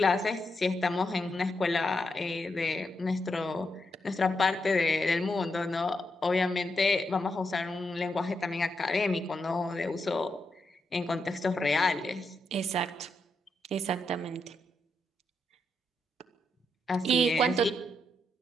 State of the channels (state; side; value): normal; both; correlation 0.82